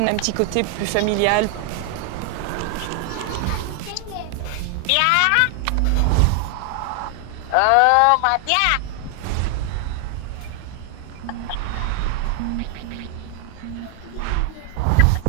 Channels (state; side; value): different; both; correlation 0.00